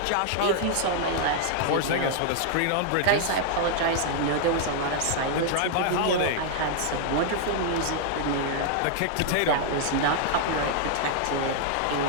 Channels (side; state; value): both; different; correlation -0.01